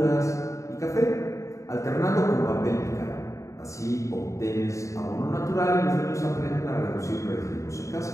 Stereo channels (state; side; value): late; right; 0.15 ms